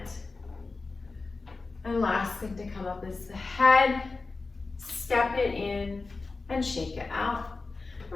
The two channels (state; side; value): quieter; right; 3.8 dB